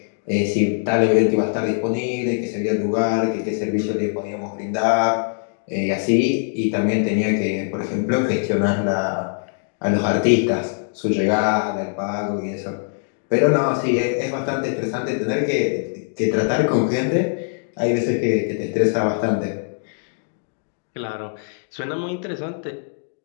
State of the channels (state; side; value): silent; right; digital silence